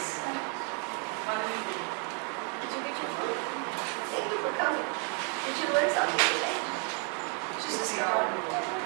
Did you get your food? Thank you for coming. Did you learn something today? Just a start.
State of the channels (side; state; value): left; quieter; 39.3 dB